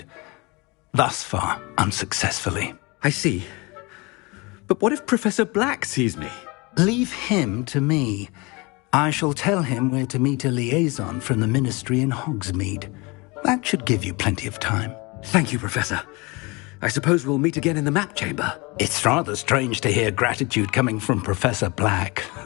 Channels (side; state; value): right; quieter; 26.5 dB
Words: Thus far, unsuccessfully. I see. But what if Professor Black sees me? Leave him to me. I shall tell him where to meet a liaison from the ministry in Hogsmeade. That should give you plenty of time. Thank you, Professor. I suppose we'll meet again in the map chamber. It's rather strange to hear gratitude coming from Professor Black.